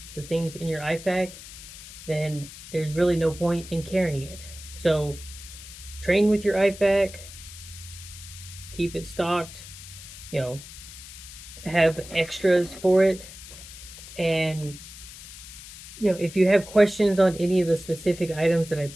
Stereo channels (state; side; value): noise; left; hiss, 15 dB below the sound